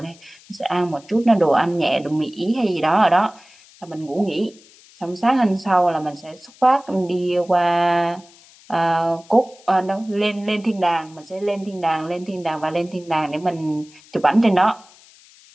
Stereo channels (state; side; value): noise; left; hiss, 26 dB below the sound